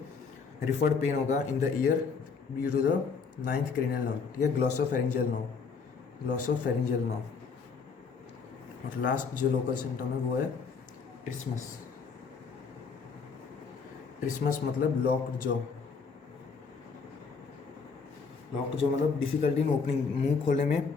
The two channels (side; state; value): right; quieter; 5.3 dB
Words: रिफर्ड पेन होगा in the ear due to the 9th cranial nerve, ठीक है, ग्लॉसोफेरिंजियल नर्व। और लास्ट जो लोकल सिम्टम है वो है ट्रिस्मस मतलब लॉक्ड जॉ मतलब डिफिकल्टी इन ओपनिंग, मुंह खोलने में